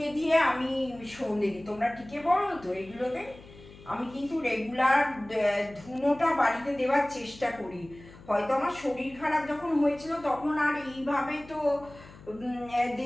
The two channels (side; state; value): left; noise; hum, 20 dB below the sound